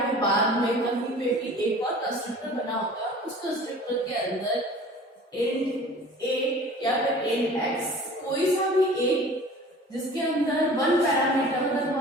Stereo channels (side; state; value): both; normal; correlation 0.44